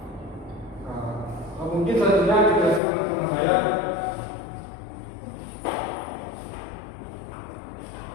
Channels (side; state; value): right; drops out; at 2.8 s